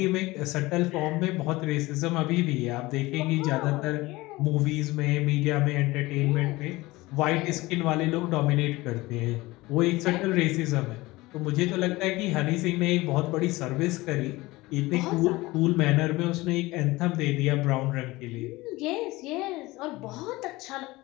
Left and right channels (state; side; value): quieter; right; 20.4 dB